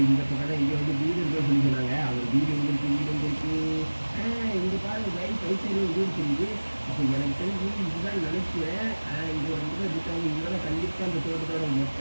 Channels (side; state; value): both; inverted; correlation -1.00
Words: இந்த பக்கம் தான் இங்கே வந்து வீடு இருக்குன்னு சொல்லி சொன்னாங்க. அவங்க வீடு எங்கே இருக்குது? இங்கே பாருங்க லைன் சைடு வீடு தெரியுது. அப்போ எனக்கு தெரிஞ்சு இதுதான் நினைக்கிறேன். இங்கே வந்து இருக்காங்க. இங்கே கண்டிப்பாக இந்த தோட்டத்தோட மொத்த